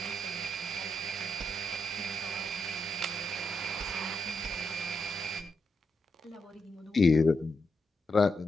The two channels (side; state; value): both; normal; correlation 0.83